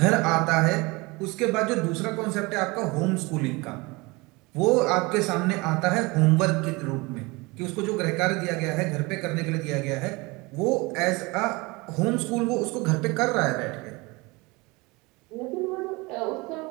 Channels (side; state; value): left; quieter; 24.8 dB